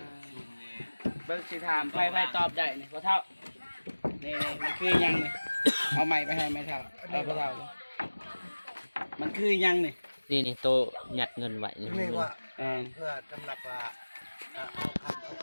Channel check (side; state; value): both; inverted; correlation -1.00